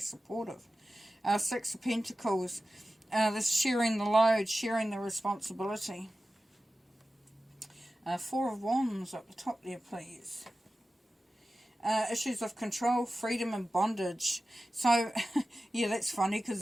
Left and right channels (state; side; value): normal; both; correlation 0.95